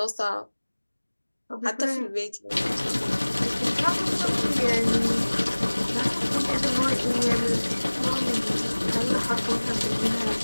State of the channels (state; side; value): inverted; both; correlation -1.00